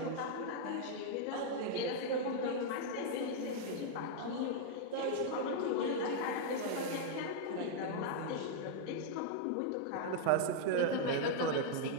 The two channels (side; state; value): both; different; correlation -0.01